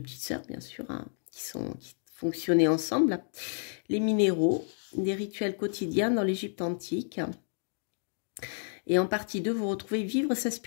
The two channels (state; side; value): silent; right; digital silence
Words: petites sœurs, bien sûr, hein, qui fonctionnaient ensemble, les minéraux, des rituels quotidiens dans l'Égypte antique. Et en partie 2, vous retrouvez vivre sa